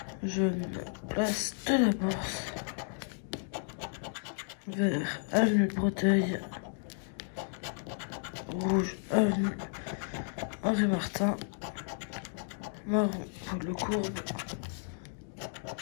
Jaune, place de la Bourse. Vert, avenue de Breteuil. Rouge, avenue Henri Martin. Marron, pour le Courbe.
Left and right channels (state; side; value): silent; right; digital silence